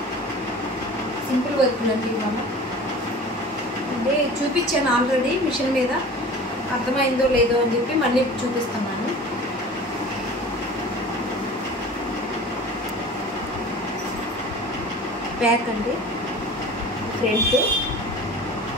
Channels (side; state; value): both; normal; correlation 0.40